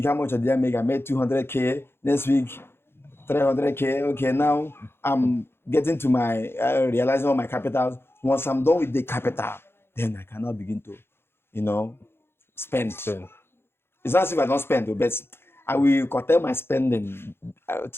how much did I make? I made 200K. Next week, 300K. Okay, now I'm getting to my, realizing all my capitals. Once I'm done with the capital, then I cannot begin to, spend. It's not as if I don't spend, but I will curtail my spending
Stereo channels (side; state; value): right; late; 0.11 ms